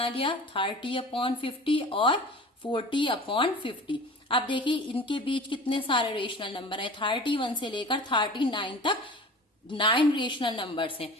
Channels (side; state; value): both; normal; correlation 0.39